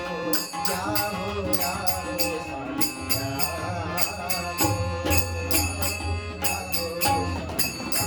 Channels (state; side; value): identical; both; correlation 1.00